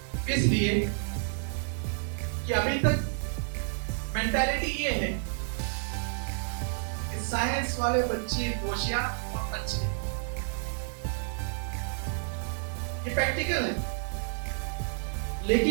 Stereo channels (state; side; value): silent; left; digital silence